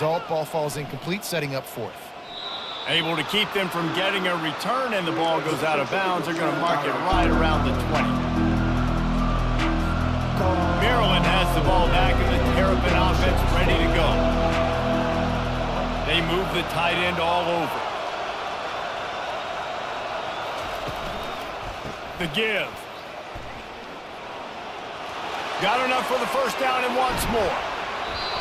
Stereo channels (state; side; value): identical; both; correlation 1.00